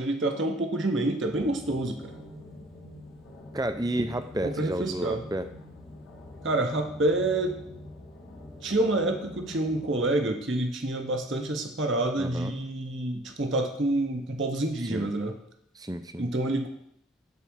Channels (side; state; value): both; normal; correlation 0.52